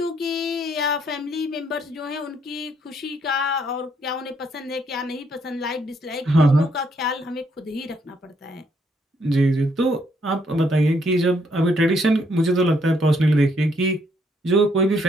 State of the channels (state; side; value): normal; both; correlation 0.71